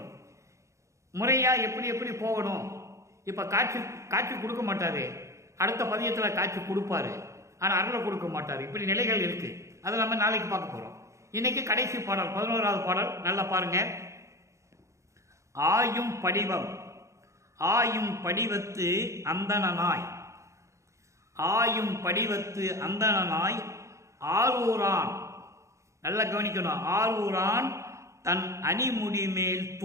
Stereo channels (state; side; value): late; left; 0.14 ms